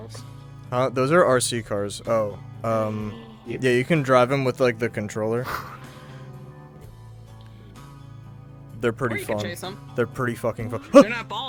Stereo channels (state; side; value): identical; both; correlation 1.00